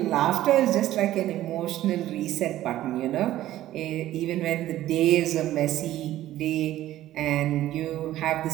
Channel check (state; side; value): quieter; left; 14.0 dB